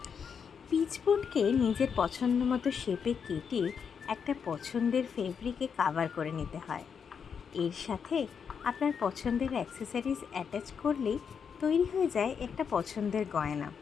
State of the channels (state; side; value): quieter; right; 6.7 dB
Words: পিচবোর্ডকে নিজের পছন্দ মতো শেপে কেটে একটা পছন্দের ফেব্রিকে কাভার করে নিতে হয়। এর সাথে আপনার পছন্দের অ্যাক্সেসরিজ অ্যাটাচ করলেই তৈরি হয়ে যায় একটা পছন্দের গয়না।